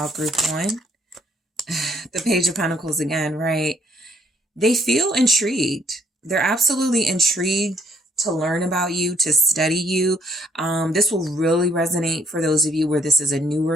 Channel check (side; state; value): both; normal; correlation 0.67